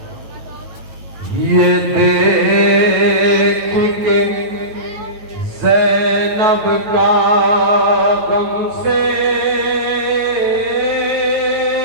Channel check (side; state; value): left; late; 9.2 ms